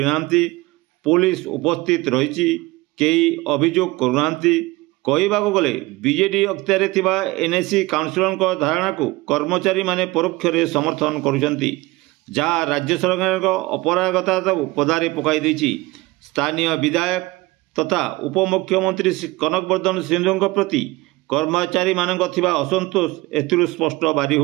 पुलिस उपस्थित रही कई अभियोग करूना। कहवाक गले बीजेडी अख्तियार थिबा एनएसी काउंसिलर धारणा को कर्मचारी माने परोक्ष रे समर्थन करुचंती, जहाँ राज्य सरकार अपरागता को पदारे पकाई देछि। स्थानीय विधायक तथा उपमुख्यमंत्री कनकवर्धन सिंधु प्रति कर्मचारी मानक थिबा असंतोष एथिरु स्पष्ट बारी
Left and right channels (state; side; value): quieter; left; 21.3 dB